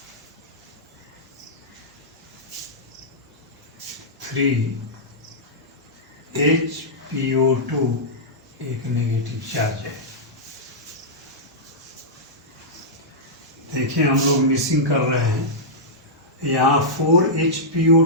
3HPO2 एक नेगेटिव चार्ज है। देखिए हम लोग मिसिंग कर रहे हैं, यहाँ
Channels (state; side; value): normal; both; correlation -0.12